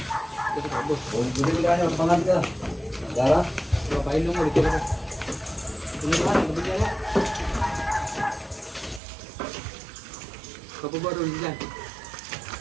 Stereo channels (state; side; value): drops out; left; at 9.0 s